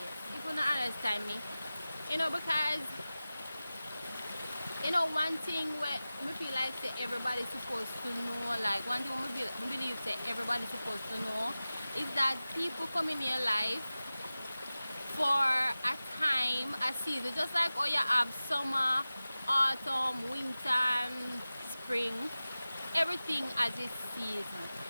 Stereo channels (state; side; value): inverted; both; correlation -0.96